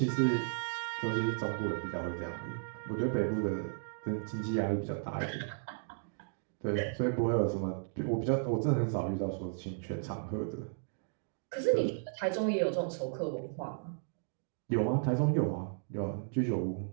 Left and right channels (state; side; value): silent; left; digital silence